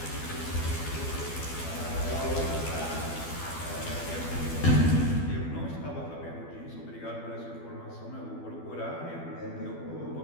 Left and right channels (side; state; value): right; late; 12 ms